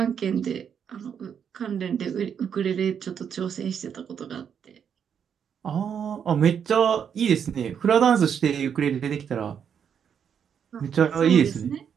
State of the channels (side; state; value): left; quieter; 7.8 dB